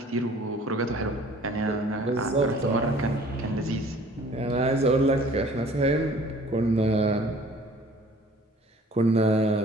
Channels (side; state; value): both; normal; correlation 0.52